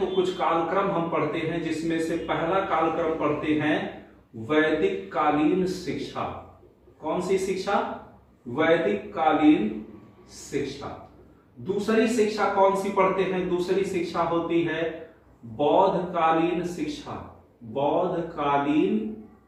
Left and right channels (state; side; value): identical; both; correlation 1.00